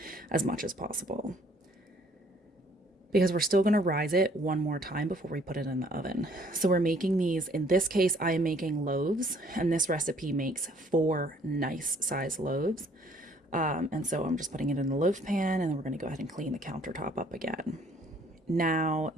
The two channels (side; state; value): both; normal; correlation 0.61